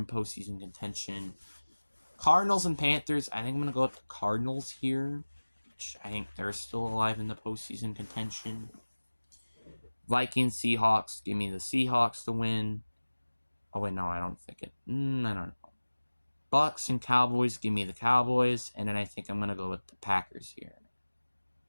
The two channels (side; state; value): both; inverted; correlation -1.00